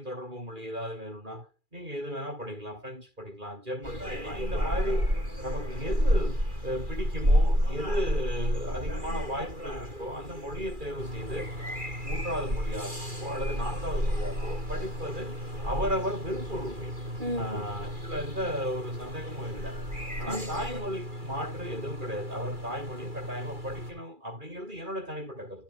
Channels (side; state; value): left; late; 2.4 ms